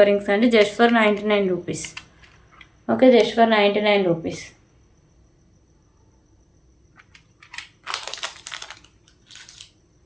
రింగ్స్ అండి, just for 99 rupees. Okay, just for 99 rupees.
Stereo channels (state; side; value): identical; both; correlation 1.00